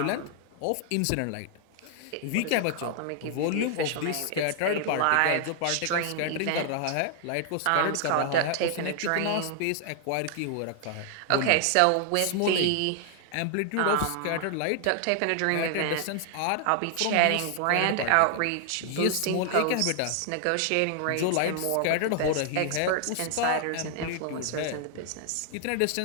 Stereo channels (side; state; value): both; different; correlation 0.00